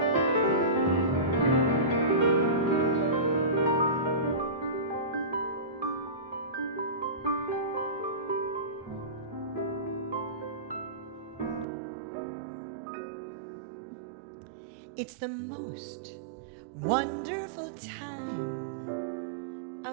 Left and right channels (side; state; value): left; drops out; at 11.7 s